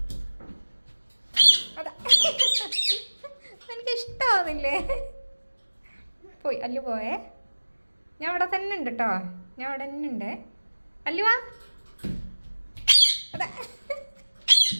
അതാ എനിക്ക് ഇഷ്ടമാവുന്നില്ലേ. പോയി അല്ലു പോയേ. ഞാൻ അവിടെ തന്നെ ഉണ്ട് കേട്ടോ. ഞാൻ അവിടെ തന്നെ ഉണ്ട്. അല്ലുവാ. അതാ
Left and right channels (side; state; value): both; inverted; correlation -1.00